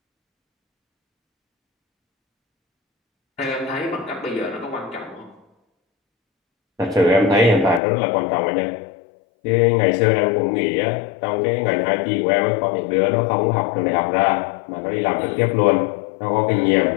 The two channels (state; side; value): drops out; right; at 7.8 s